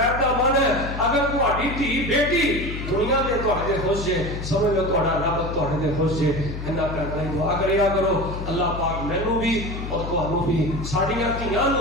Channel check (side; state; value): left; noise; hum, 7 dB below the sound